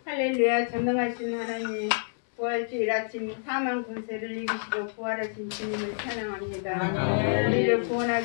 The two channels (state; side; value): silent; right; digital silence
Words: 할렐루야. 전능하신 하나님, 부활주일 아침 사망 권세를 이기시고 부활하신 주님을 찬양합니다. 우리를